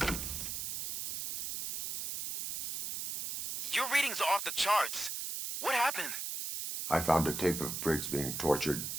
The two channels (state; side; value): noise; right; hiss, 4 dB below the sound